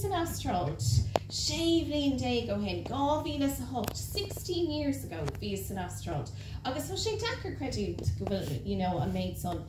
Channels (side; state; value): both; identical; correlation 1.00